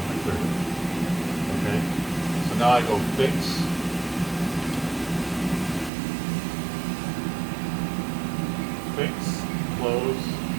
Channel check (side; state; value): left; drops out; at 5.9 s